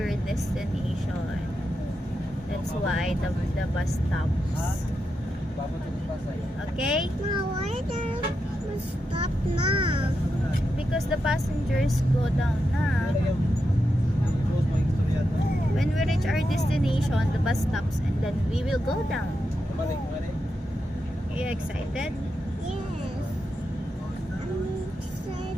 destination. That's why the bus stops. Okay? Ma, why the bus stop now? Because the passengers go down na. When we reach our destination, the bus stops and then we will go down. Are you excited? Yes. I'm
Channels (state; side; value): normal; both; correlation 0.87